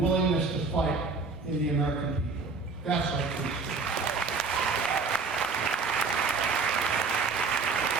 willingness to fight in the American people. That's our truth.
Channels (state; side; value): quieter; left; 4.4 dB